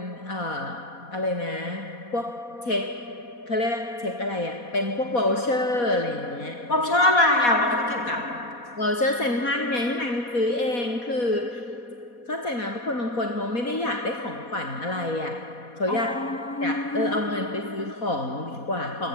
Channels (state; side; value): late; right; 4.2 ms